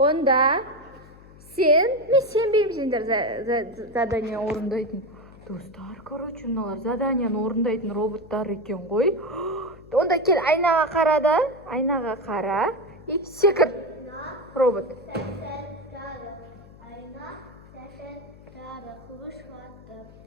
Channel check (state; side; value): noise; left; hum, 21 dB below the sound